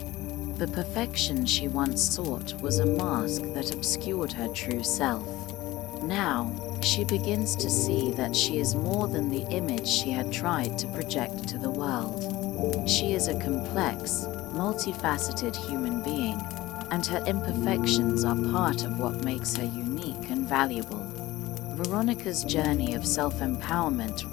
The perfection she once sought was a mask that obscured her true self. Now, she begins to see that she is more than the image she had tried to project to the world. She is a complex, multifaceted human being, and her imperfections are part of what makes her unique and valuable. Veronika's journey of self-empowerment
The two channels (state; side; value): quieter; right; 17.8 dB